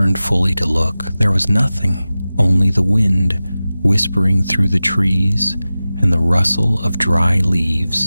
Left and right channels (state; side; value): inverted; both; correlation -0.96